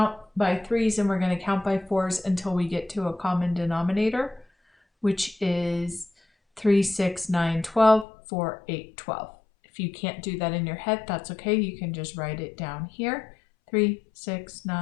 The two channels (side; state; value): right; drops out; at 8.1 s